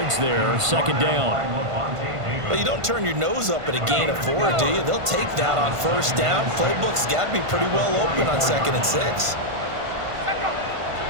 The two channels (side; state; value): left; late; 1.5 ms